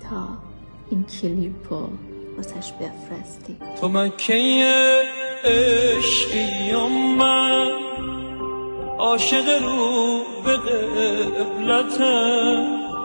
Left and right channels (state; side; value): inverted; both; correlation -1.00